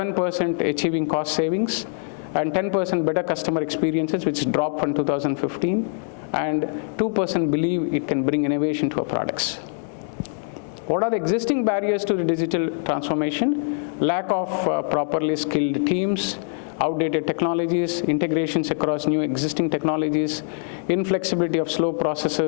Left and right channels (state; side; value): silent; right; digital silence